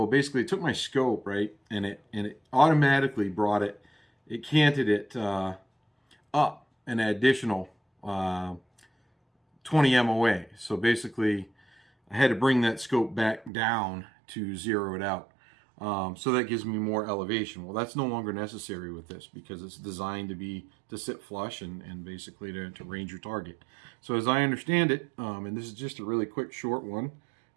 basically it took my scope, right, and it automatically brought it, it canted it up an additional 20 MOA. So basically, I had to bring that scope back down to zero it out. So that gives me more elevation. Well, that's no longer necessary with this because it's designed to sit flush and basically to range your target. So as I understand it, and this is just a really quick short one,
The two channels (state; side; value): drops out; left; at 13.5 s